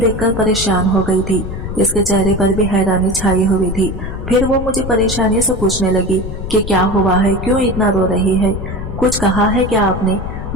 परेशान हो गई थी। इसके चेहरे पर भी हैरानी छाई हुई थी। फिर वो मुझे परेशानी से पूछने लगी कि क्या हुआ है, क्यों इतना रो रही है, कुछ कहा है क्या आपने?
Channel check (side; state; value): left; noise; rumble, 7 dB below the sound